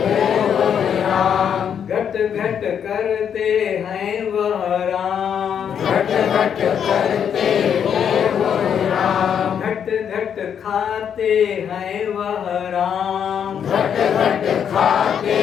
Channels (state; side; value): quieter; right; 8.2 dB